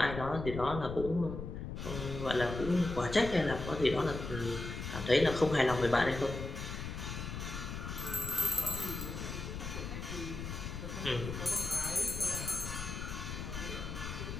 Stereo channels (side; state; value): left; noise; rumble, 6 dB below the sound